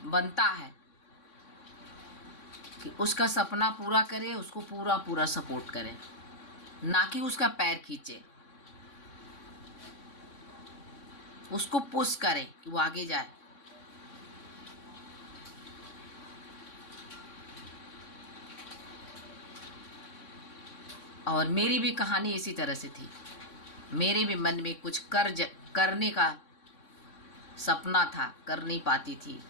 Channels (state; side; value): late; right; 3.6 ms